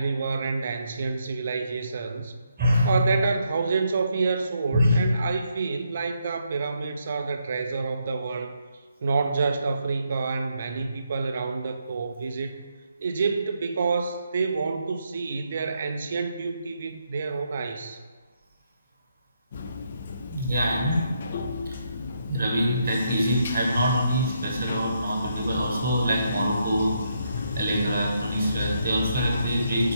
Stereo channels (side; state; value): both; inverted; correlation -0.77